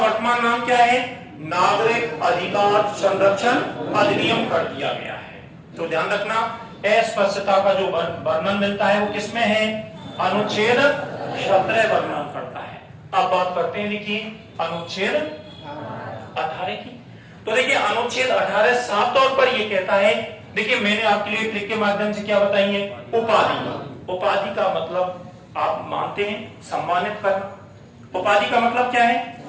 नाम क्या है? नागरिक अधिकार संरक्षण अधिनियम कर दिया गया है। तो ध्यान रखना, अस्पष्टता का जो वर्णन मिलता है वो किसमें है? अनुच्छेद 17 वर्णन करता है। अब बात करते हैं देखिए अनुच्छेद 18 की। तो देखिए अनुच्छेद 18 साफ तौर पर ये कहता है, देखिए मैंने आपके लिए ट्रिक के माध्यम से क्या बताई है? उपाधि। उपाधि का मतलब आप मानते हैं सम्मानित करना। उपाधि का मतलब क्या है?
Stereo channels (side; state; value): both; identical; correlation 1.00